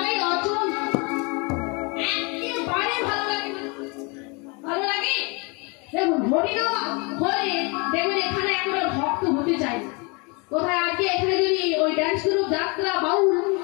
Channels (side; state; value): right; quieter; 30.6 dB